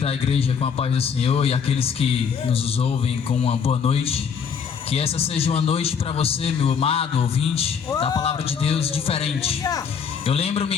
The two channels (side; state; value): right; quieter; 6.7 dB